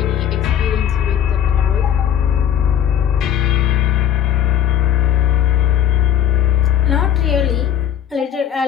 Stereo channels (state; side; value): quieter; right; 9.9 dB